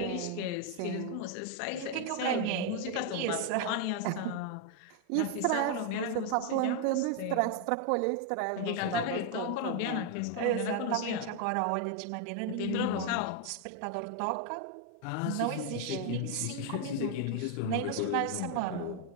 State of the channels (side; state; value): both; different; correlation 0.01